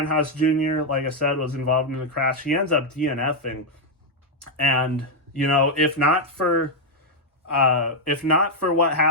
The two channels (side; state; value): both; normal; correlation 0.00